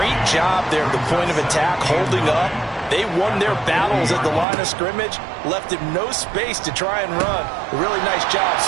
job there at the point of attack, holding up. They won their battles at the line of scrimmage, left him no space to try and run. A really nice job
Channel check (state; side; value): drops out; left; at 4.5 s